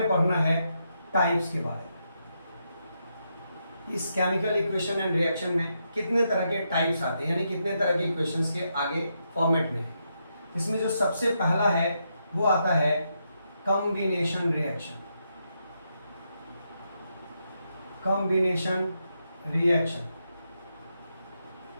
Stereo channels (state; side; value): inverted; both; correlation -0.82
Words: पढ़ना है टाइप्स के बारे में। इस केमिकल इक्वेशन एंड रिएक्शन में कितने तरह के टाइप्स आते हैं, यानी कितने तरह के इक्वेशंस के आगे फॉर्मेट में है। इसमें जो सबसे पहला है वो आता है combination reaction. Combination reaction,